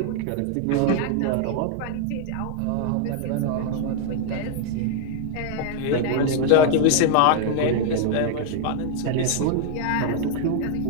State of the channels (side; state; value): both; different; correlation 0.00